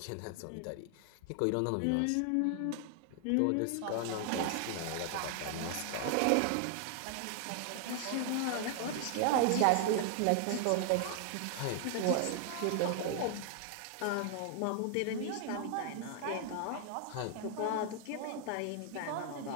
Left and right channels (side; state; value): both; different; correlation 0.00